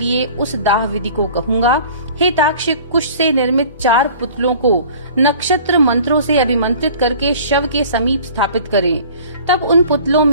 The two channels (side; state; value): both; inverted; correlation -0.46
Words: उस दाह विधि को कहूँगा। हे ताक्ष, कुश से निर्मित 4 पुतलों को नक्षत्र मंत्रों से अभिमंत्रित करके शव के समीप स्थापित करें। तब उन पुतलों